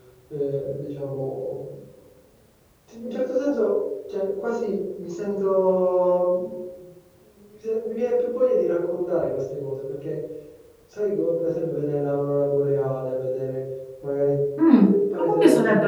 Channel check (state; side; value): identical; both; correlation 1.00